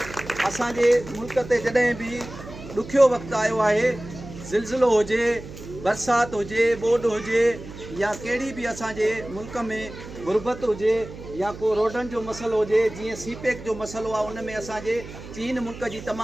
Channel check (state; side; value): noise; right; hum, 14 dB below the sound